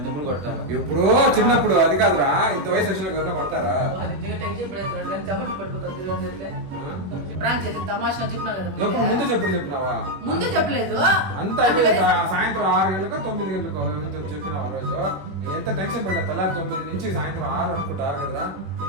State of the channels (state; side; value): late; left; 21 ms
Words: కొట్టాను ఇప్పుడు చిన్నప్పుడు అది కాదురా ఇంత వయసు వచ్చిన ఎవరైనా కొడతారా ప్రాంక్ చేసి తమాషా చెప్పినా కదా ఎప్పుడు ముందు చెప్పినావా ముందు చెప్పలేదు అంత అయిపోయింది సాయంత్రం 6 గంటలకు 9 గంటలకు చెప్పినావు ఆ రోజు నేను ఎంత టెన్షన్ పడ్డా తెల్లారి 9 నుంచి సాయంత్రం 6 అనుకుంటారు కదరా